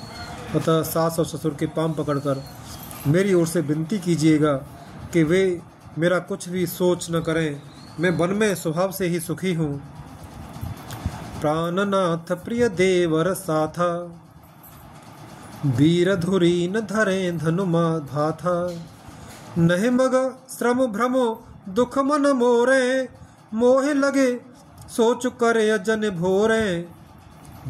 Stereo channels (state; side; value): identical; both; correlation 1.00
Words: अतः सास और ससुर के पांव पकड़कर मेरी ओर से विनती कीजिएगा कि वे मेरा कुछ भी सोच न करें, मैं वन में स्वभाव से ही सुखी हूँ। प्राणनाथ प्रिय देवर साथा, वीर धुरी न धरे धनुमा भाथा। नहीं मग श्रम भ्रमो दुख मन मोरे, मोह लगे सोच करे अजन भोरे।